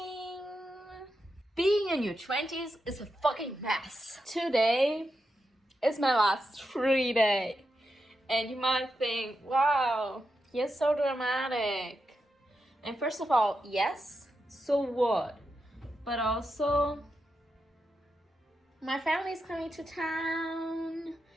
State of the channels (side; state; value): both; normal; correlation 0.87